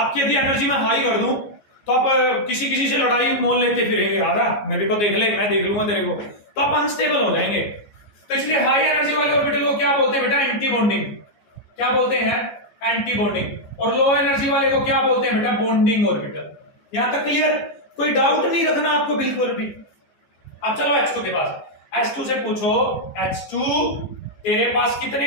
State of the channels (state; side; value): late; right; 14 ms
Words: यदि एनर्जी मैं हाई कर दूं तो आप किसी किसी से लड़ाई मोल लेते फिरेंगे, आजा मेरे को देख ले, मैं देख लूंगा तेरे को, तो आप अनस्टेबल हो जाएंगे। तो इसलिए हाई एनर्जी वाले ऑर्बिटल को क्या बोलते हैं बेटा? Anti bonding. क्या बोलते हैं? Anti bonding. और लो एनर्जी वाले को क्या बोलते हैं बेटा? Bonding orbital. यहां तक क्लियर? कोई डाउट नहीं रखना आपको बिल्कुल भी। अब चलो H2 के पास। H2 से पूछो, H2 तेरे पास कितने